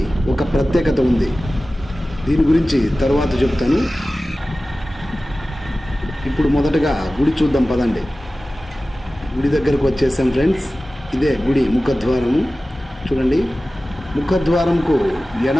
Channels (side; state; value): both; normal; correlation 0.96